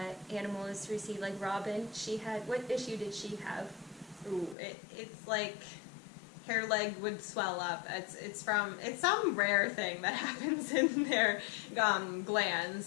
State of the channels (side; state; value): right; drops out; at 4.5 s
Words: animals receive, like Robin, she had, what issue did she have? Ooh, it's like her leg would swell up. It's some rare thing that happens in their